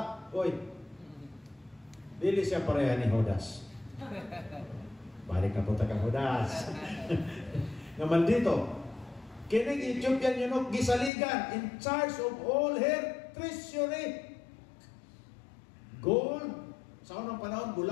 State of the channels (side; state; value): right; drops out; at 11.1 s